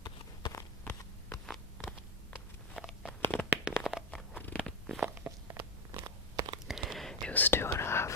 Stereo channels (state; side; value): normal; both; correlation 0.08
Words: It was 2.5